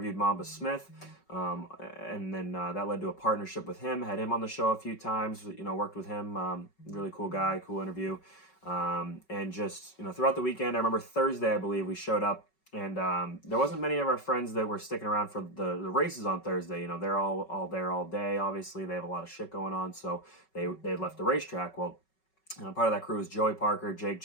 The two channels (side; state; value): right; late; 5.3 ms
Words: Mamba Smith, and then that led to a partnership with him. Had him on the show a few times, worked with him. Really cool guy, cool interview. And just, throughout the weekend, I remember Thursday, I believe, we showed up, and there wasn't many of our friends that were sticking around for the races on Thursday. They're all there all day. Obviously, they have a lot of shit going on, so they left the racetrack. Well, part of that crew was Joey Parker, Jake